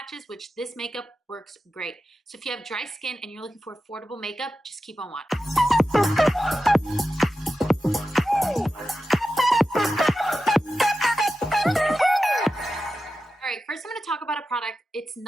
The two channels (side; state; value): both; normal; correlation 0.92